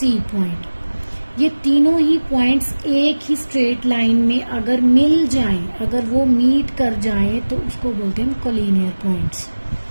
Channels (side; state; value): both; inverted; correlation -1.00